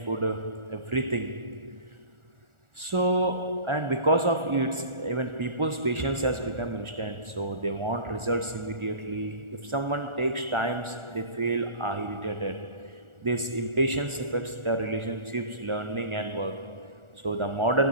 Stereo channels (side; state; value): left; late; 1.4 ms